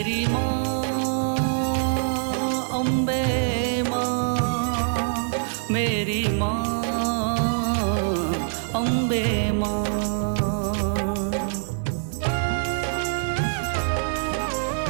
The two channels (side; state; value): left; silent; digital silence